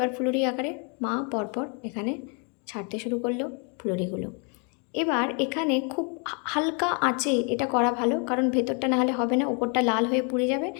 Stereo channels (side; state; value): right; quieter; 37.2 dB